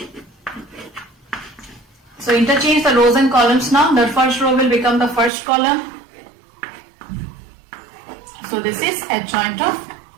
So interchange the rows and columns now. The first row will become the first column. So this is adjoint of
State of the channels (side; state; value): left; drops out; at 5.3 s